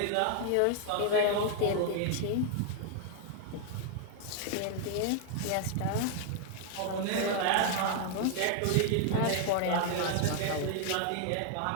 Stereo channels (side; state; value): both; different; correlation 0.00